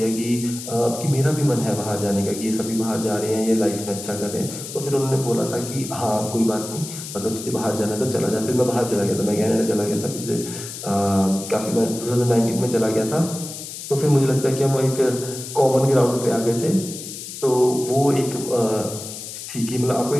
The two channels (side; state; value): left; noise; hiss, 10 dB below the sound